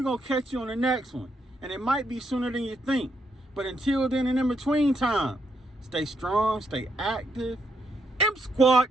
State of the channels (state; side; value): normal; both; correlation 0.77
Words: going to catch you on the next one. And it might be sooner than you think. But until then and in between time, stay strong, stay active. M-Squad.